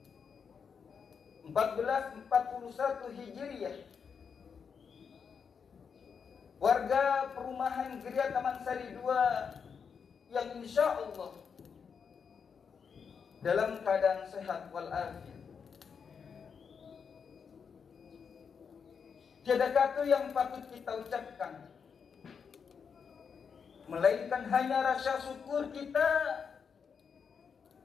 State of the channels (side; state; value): right; quieter; 6.4 dB